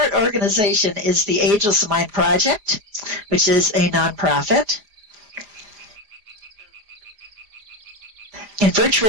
organization is the Ageless Mind Project, which is a nonprofit. In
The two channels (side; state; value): left; late; 4.9 ms